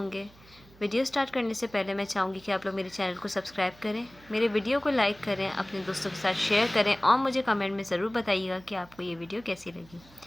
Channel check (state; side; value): noise; right; hum, 25 dB below the sound